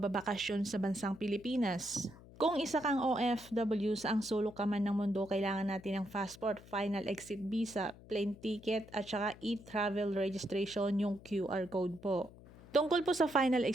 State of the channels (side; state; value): left; noise; hum, 20 dB below the sound